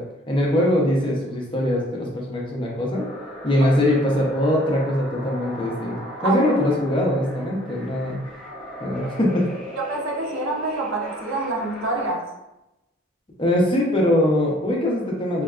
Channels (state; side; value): normal; both; correlation 0.58